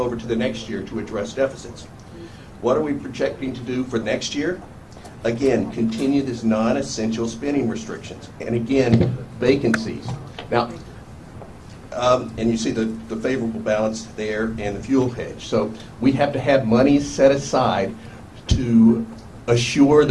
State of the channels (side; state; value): both; identical; correlation 1.00